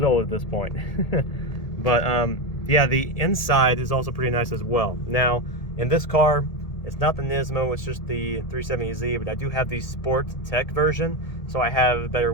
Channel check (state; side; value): late; right; 1.8 ms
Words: old at this point. But yeah, the inside is also pretty nice as well. Now in this car, it's not the Nismo, it's just the 370Z, but I do have the Sport Tech version. So I have better